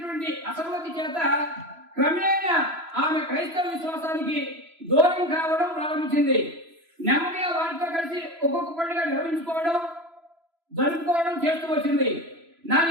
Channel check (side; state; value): left; late; 3.0 ms